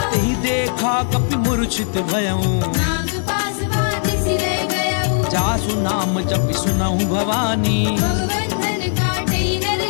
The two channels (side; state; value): right; silent; digital silence